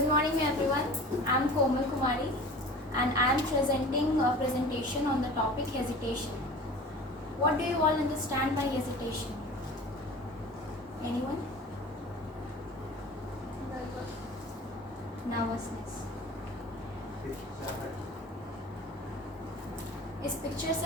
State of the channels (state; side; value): normal; both; correlation 0.40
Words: morning everyone. I am Komal Kumari and I am presenting a presentation on the topic hesitation. What do you all understand by hesitation? Anyone? Nervousness. इस picture से